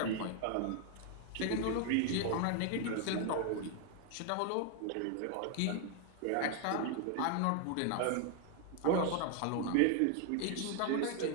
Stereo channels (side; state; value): both; different; correlation 0.00